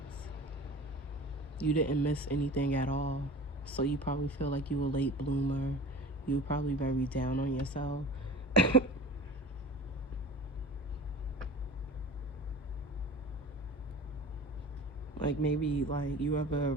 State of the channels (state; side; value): normal; both; correlation 0.38